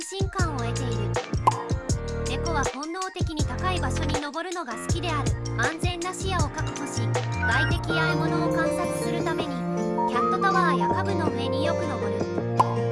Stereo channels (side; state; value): both; identical; correlation 1.00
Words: 心感を得ている。猫は本能的に高い場所に登るのが好きである。安全な視野を確保し、外敵や獲物を観察するためにキャットタワーや家具の上によく登る。